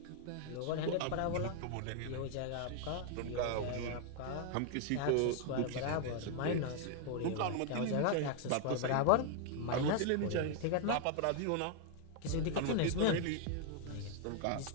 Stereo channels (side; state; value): both; different; correlation 0.00